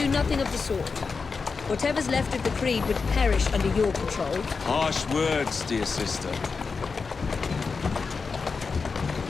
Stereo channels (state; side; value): quieter; right; 4.8 dB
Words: nothing of the sort. Whatever's left of the Creed would perish under your control. Harsh words, dear sister.